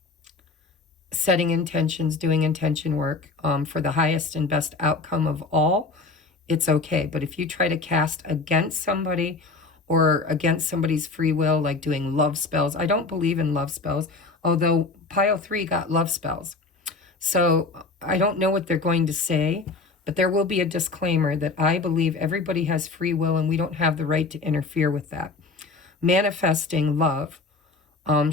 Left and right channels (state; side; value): quieter; right; 3.9 dB